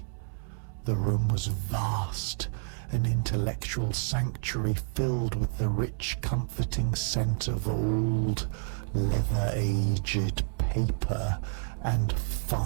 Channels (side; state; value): left; silent; 58 dB below the other